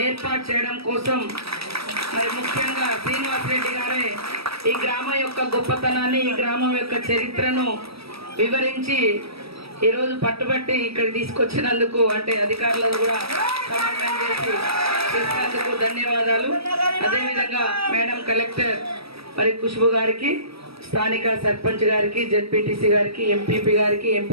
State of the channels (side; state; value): left; late; 0.77 ms